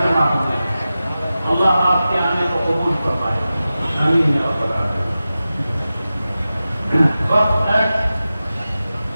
جمع ہوئے، اللہ آپ کے آنے کو قبول فرمائے، آمین یا رب العالمین۔ وقت ہے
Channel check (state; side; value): inverted; both; correlation -0.94